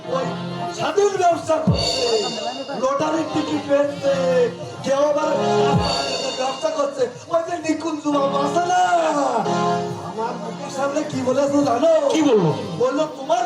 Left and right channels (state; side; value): identical; both; correlation 1.00